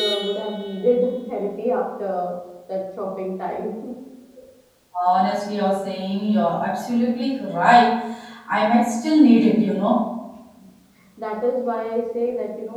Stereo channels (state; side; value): identical; both; correlation 1.00